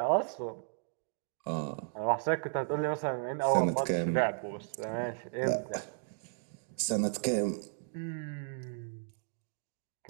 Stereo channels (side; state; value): left; silent; digital silence